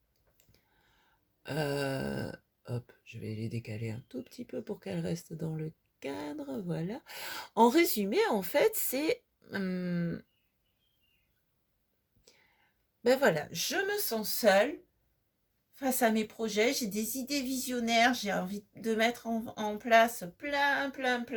hop, je vais les décaler un tout petit peu pour qu'elles restent dans le cadre, voilà. En résumé, en fait, c'est ben voilà, je me sens seule face à mes projets, j'ai des idées visionnaires, j'ai envie de mettre en place plein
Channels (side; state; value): both; identical; correlation 1.00